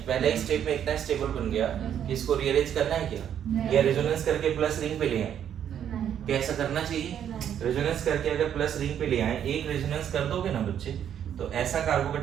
पहले ही स्टेप में इतना स्टेबल बन गया कि इसको रीअरेंज करना है क्या, या रेजोनेंस करके प्लस रिंग पे ले आए, क्या ऐसा करना चाहिए? रेजोनेंस करके अगर प्लस रिंग पे ले आए, एक रेजोनेंस कर दोगे ना बच्चे, तो ऐसा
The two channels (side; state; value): left; quieter; 9.4 dB